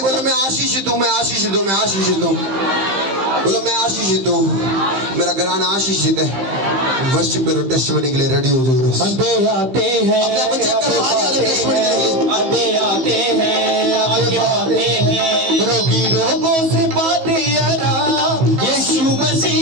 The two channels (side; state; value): left; late; 15 ms